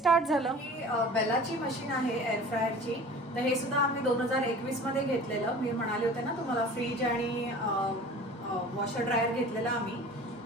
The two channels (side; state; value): both; normal; correlation 0.42